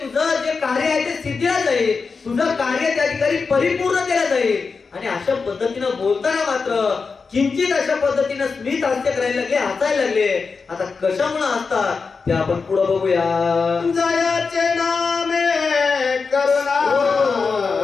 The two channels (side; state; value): right; quieter; 4.8 dB